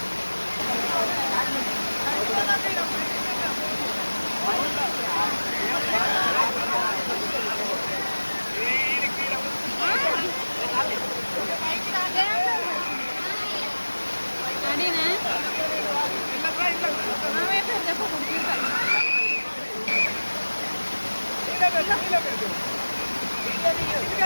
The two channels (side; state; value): both; inverted; correlation -1.00